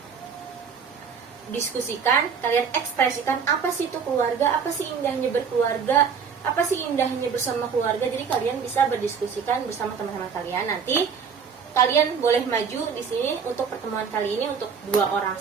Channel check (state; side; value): quieter; left; 6.3 dB